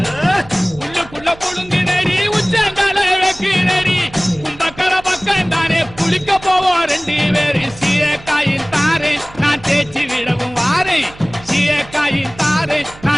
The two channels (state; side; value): noise; right; hum, 20 dB below the sound